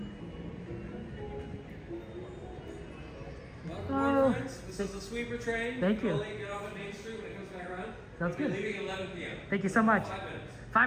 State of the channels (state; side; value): identical; both; correlation 1.00